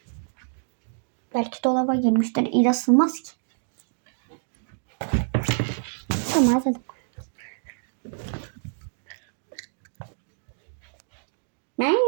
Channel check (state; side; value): silent; left; digital silence